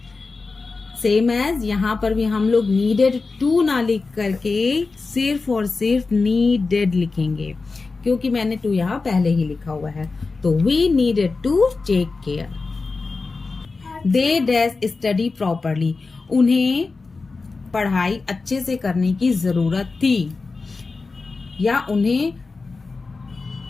Same as यहाँ पर भी हम लोग नीडेड टू ना लिख करके सिर्फ और सिर्फ नीडेड लिखेंगे क्योंकि मैंने टू यहाँ पहले ही लिखा हुआ है. तो we needed to take care. They dash study properly. उन्हें पढ़ाई अच्छे से करने की जरूरत थी या उन्हें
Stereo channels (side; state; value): right; quieter; 4.0 dB